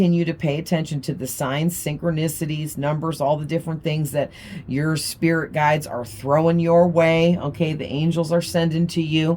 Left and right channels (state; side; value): identical; both; correlation 1.00